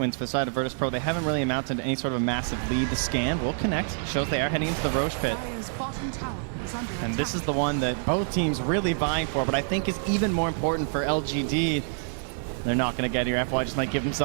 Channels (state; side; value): silent; left; digital silence